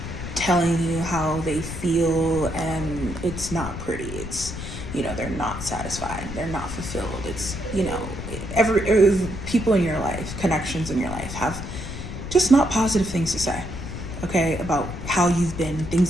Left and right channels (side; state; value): left; noise; rumble, 8 dB below the sound